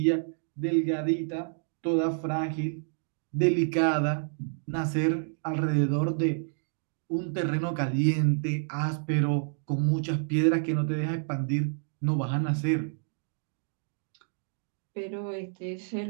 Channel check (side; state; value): left; silent; digital silence